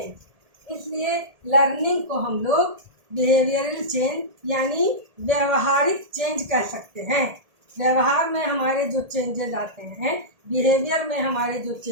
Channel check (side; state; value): left; late; 1.8 ms